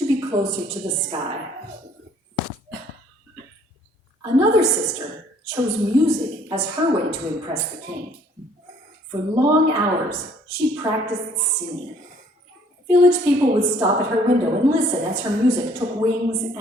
be closer to the sky. Another sister chose music as her way to impress the king. For long hours, she practiced singing. Village people would stop at her window and listen as her music took wings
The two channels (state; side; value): normal; both; correlation 0.60